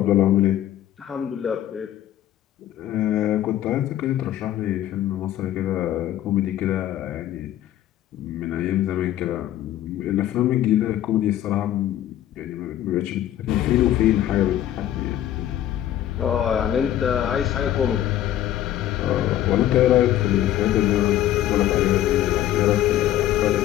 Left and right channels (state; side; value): quieter; right; 12.4 dB